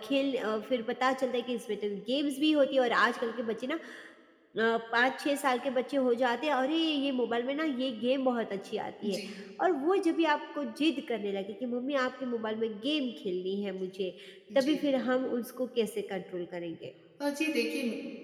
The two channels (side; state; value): both; identical; correlation 1.00